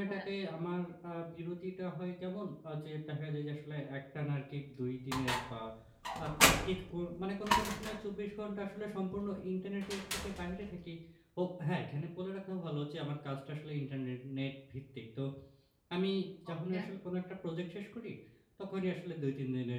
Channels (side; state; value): both; identical; correlation 1.00